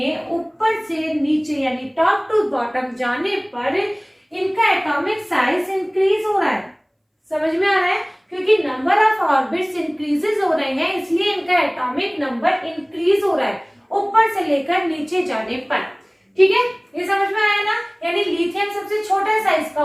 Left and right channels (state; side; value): identical; both; correlation 1.00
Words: ऊपर से नीचे यानी टॉप टू बॉटम जाने पर इनका एटॉमिक साइज इंक्रीज हो रहा है। समझ में आ रहा है? क्योंकि नंबर ऑफ ऑर्बिट्स इंक्रीजेस हो रहे हैं इसलिए इनका एटॉमिक नंबर इंक्रीज हो रहा है ऊपर से लेकर नीचे जाने पर। ठीक है, ये समझ में आया ना? यानी लिथियम सबसे छोटा साइज का